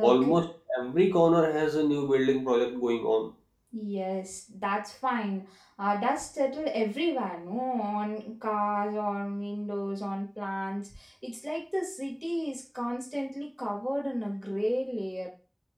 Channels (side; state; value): both; identical; correlation 1.00